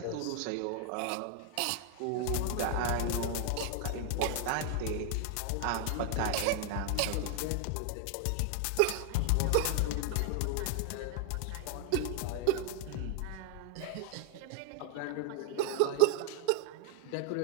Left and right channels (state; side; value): different; both; correlation 0.00